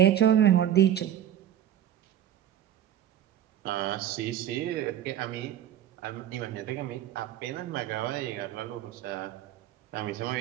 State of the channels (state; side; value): quieter; left; 10.9 dB